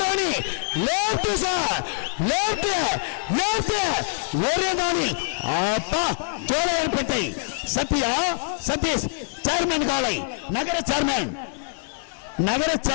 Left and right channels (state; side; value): silent; right; digital silence